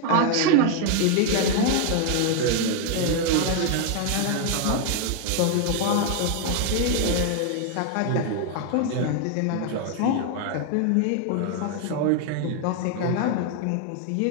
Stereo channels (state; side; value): different; both; correlation 0.00